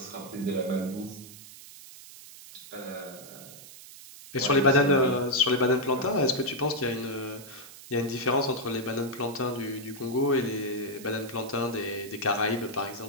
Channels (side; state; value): right; noise; hiss, 17 dB below the sound